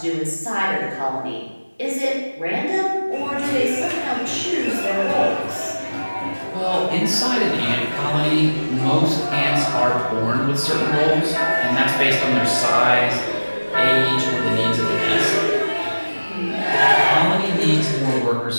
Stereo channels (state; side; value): inverted; both; correlation -1.00